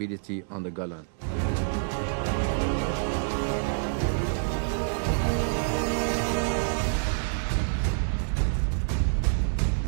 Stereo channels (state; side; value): silent; left; digital silence